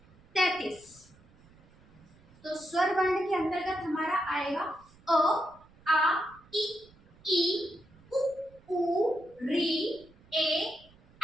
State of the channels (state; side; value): noise; right; rumble, 27 dB below the sound